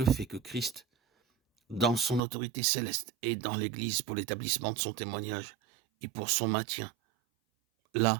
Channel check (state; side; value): drops out; left; at 2.2 s